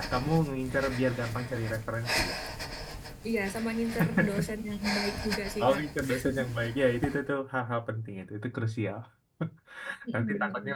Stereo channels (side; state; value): both; identical; correlation 1.00